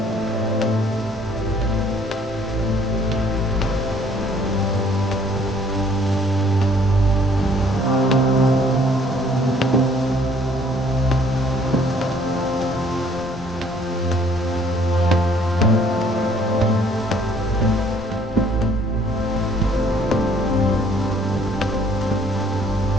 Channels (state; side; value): normal; both; correlation 0.60